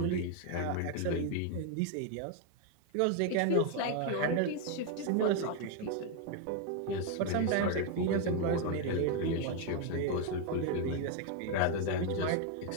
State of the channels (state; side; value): different; both; correlation 0.01